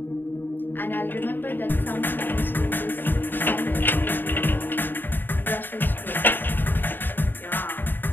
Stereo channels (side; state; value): right; late; 0.093 ms